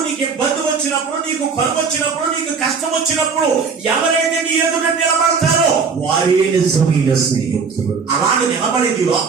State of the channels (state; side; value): quieter; left; 5.4 dB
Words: నీకు ఇబ్బంది వచ్చినప్పుడు, నీకు కరువు వచ్చినప్పుడు, నీకు కష్టం వచ్చినప్పుడు ఎవరైతే నీ ఎదుట నిలబడతారో వారే నిజమైన స్నేహితులు. అలాగే నిలబడేది